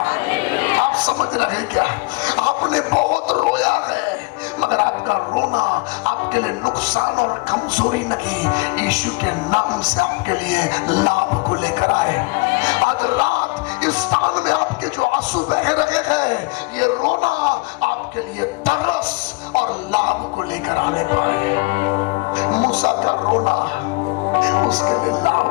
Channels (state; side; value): quieter; right; 26.0 dB